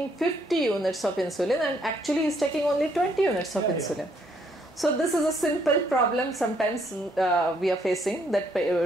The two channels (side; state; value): both; normal; correlation 0.70